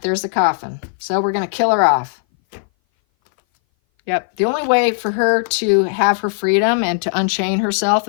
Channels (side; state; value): right; silent; 60 dB below the other